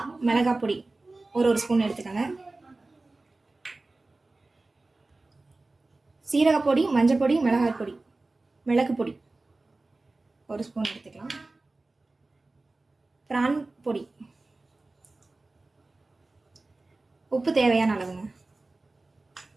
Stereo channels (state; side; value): quieter; left; 3.2 dB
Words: மிளகாய் பொடி ஒரு ஸ்பூன் எடுத்துக்கோங்க. சீரகப்பொடி, மஞ்சள் பொடி, மிளகாய் பொடி, மிளகு பொடி 1 ஸ்பூன் எடுத்துக்கலாம். ப்ரான் பொடி, உப்பு தேவையான அளவுங்க.